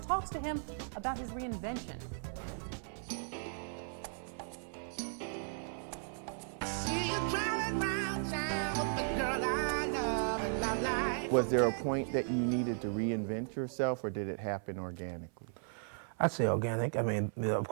to him about his reinvention. Was there a point that you needed to reinvent yourself, or did it happen organically? I'd say organic. I mean, of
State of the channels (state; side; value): silent; left; 54 dB below the other